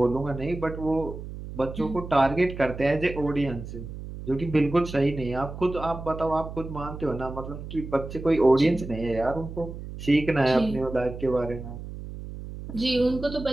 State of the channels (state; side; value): noise; right; hum, 10 dB below the sound